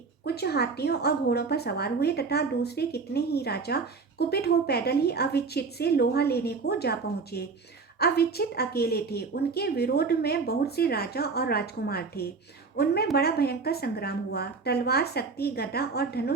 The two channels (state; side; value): quieter; left; 4.6 dB